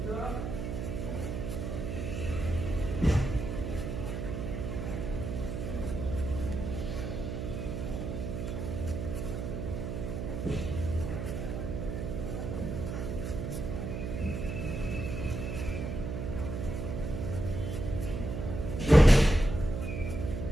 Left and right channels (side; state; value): right; noise; hum, 4 dB below the sound